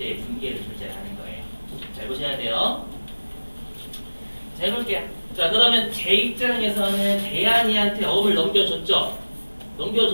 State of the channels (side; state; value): both; inverted; correlation -1.00